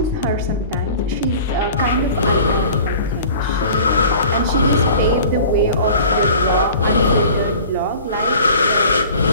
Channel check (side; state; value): both; inverted; correlation -0.44